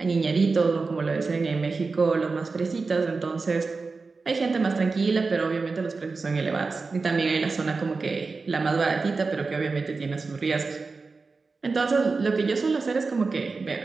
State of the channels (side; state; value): left; quieter; 4.2 dB